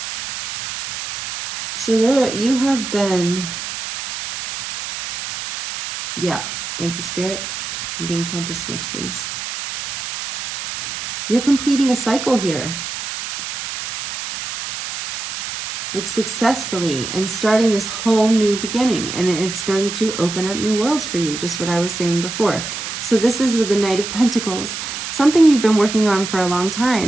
So there, you have been, yeah, thank you, Spirit. I'm being told to switch these. You're completing a cycle here. Like successfully, and starting this whole new beginning, and it's going to open up new worlds for you, just what I was saying before. So this is with the Knight of Pentacles, something you've been working on for a long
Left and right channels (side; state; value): right; noise; hiss, 7 dB below the sound